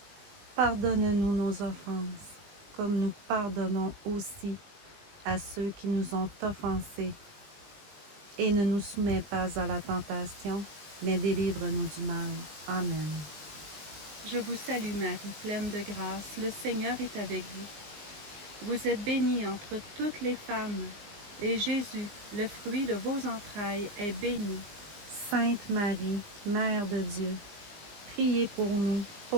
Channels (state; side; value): late; left; 20 ms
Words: Pardonne-nous nos offenses, comme nous pardonnons aussi à ceux qui nous ont offensés. Et ne nous soumets pas à la tentation, mais délivre-nous du mal. Amen. Je vous salue Marie, pleine de grâce, le Seigneur est avec vous. Vous êtes bénie entre toutes les femmes, et Jésus, le fruit de vos entrailles, est béni. Sainte Marie, Mère de Dieu, priez pour nous,